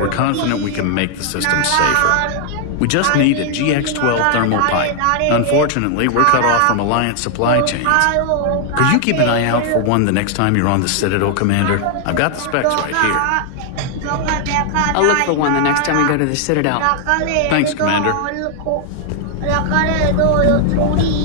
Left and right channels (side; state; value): both; different; correlation 0.00